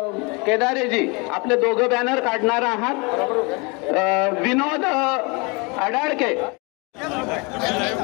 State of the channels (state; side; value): quieter; right; 29.6 dB